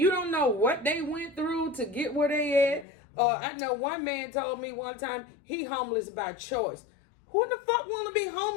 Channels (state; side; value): drops out; right; at 2.9 s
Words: don't know what they went through to get where they at. I know one man told me one time he homeless by choice. Who the fuck want to be